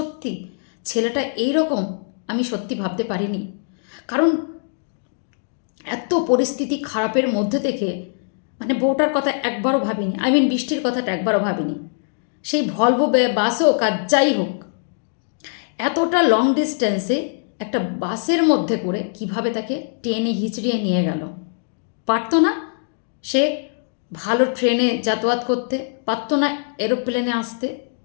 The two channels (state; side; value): silent; right; digital silence